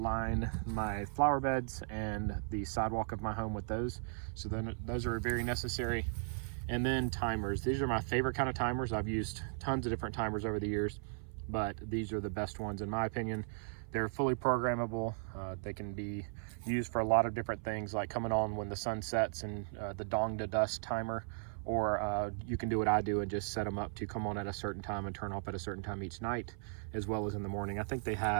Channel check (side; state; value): left; silent; 53 dB below the other